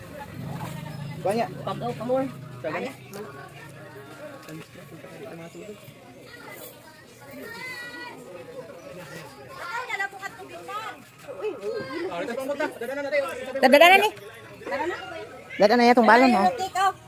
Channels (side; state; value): both; identical; correlation 1.00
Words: Banyak. Pagaw ka more. Kaya. Dadana ni. Dadana ya tong balon oh.